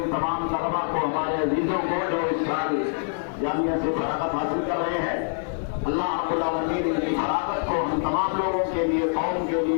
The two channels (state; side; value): silent; right; 60 dB below the other